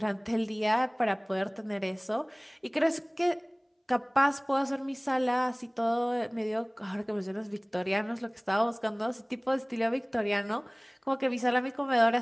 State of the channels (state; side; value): identical; both; correlation 1.00